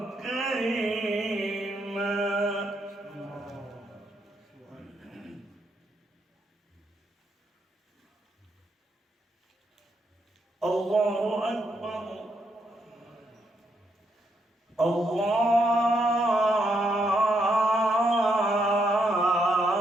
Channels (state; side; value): normal; both; correlation 0.77